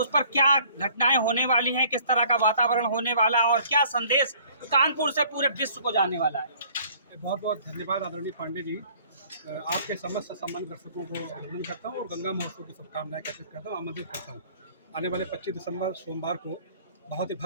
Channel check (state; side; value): inverted; both; correlation -0.55